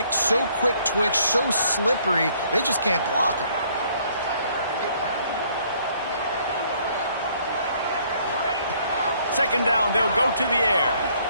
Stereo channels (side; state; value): both; inverted; correlation -0.64